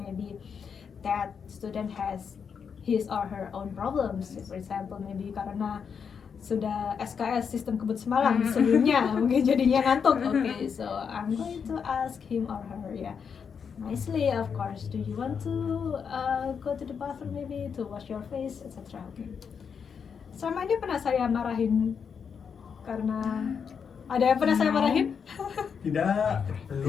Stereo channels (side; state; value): right; quieter; 6.6 dB